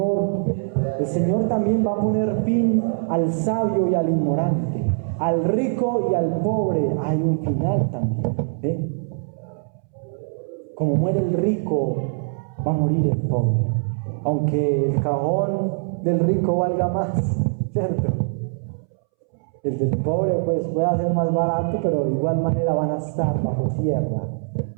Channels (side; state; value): left; silent; 64 dB below the other